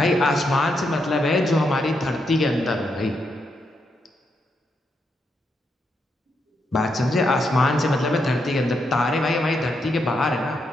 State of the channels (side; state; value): both; normal; correlation 0.81